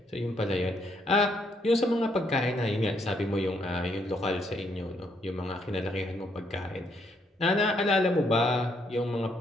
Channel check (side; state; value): both; normal; correlation 0.73